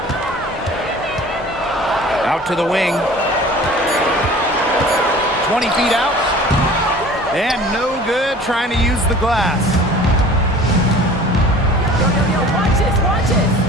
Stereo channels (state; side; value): normal; both; correlation 0.45